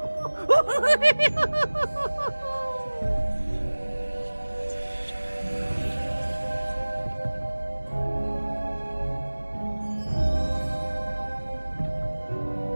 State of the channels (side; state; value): both; inverted; correlation -1.00